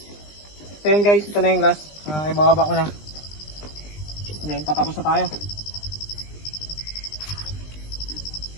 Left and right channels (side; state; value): right; late; 20 ms